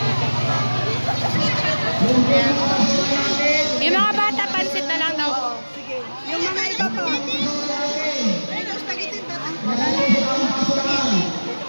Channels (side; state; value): both; inverted; correlation -1.00